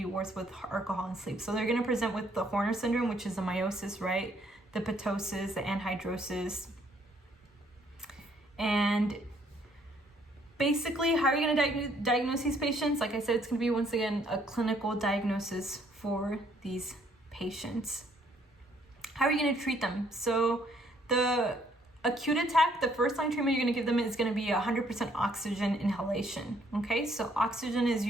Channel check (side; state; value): both; normal; correlation 0.66